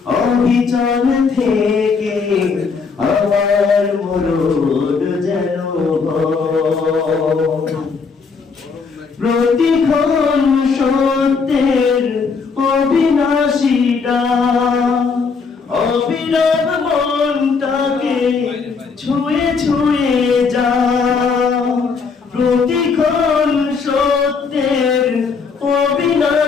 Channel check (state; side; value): quieter; right; 5.1 dB